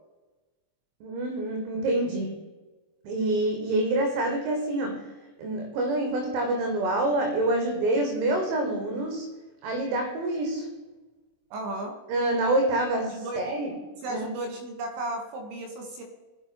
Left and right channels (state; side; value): late; left; 24 ms